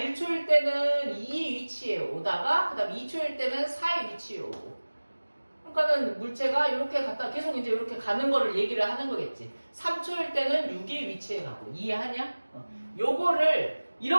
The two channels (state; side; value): inverted; both; correlation -1.00